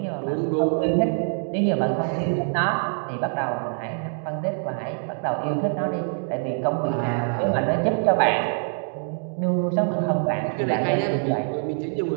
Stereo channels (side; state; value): left; silent; 62 dB below the other